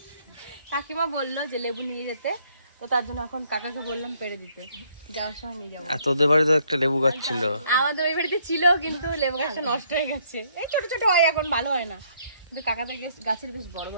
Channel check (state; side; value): inverted; both; correlation -0.67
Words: কাকিমা বললো যে লেবু নিয়ে যেতে, তো তার জন্য এখন কাকাকে বললাম পেড়ে দিতে, যাওয়ার সময় নিয়ে যাবো। তোদের বাড়িতে একটা লেবু গাছ ছিল? আমাদের ওই বাড়িতে ছিল, কিন্তু লেবু গাছটা নষ্ট হয়ে গেছে। এই ছোট ছোট হয়, এখন ভালো হয় না, কিন্তু কাকাদের গাছের বেশ বড়